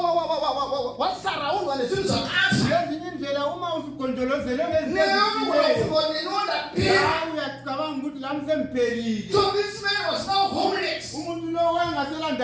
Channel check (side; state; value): both; identical; correlation 1.00